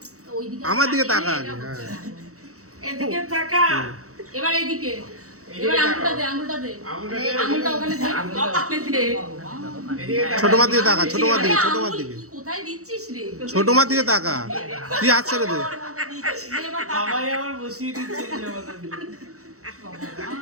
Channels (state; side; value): late; left; 0.65 ms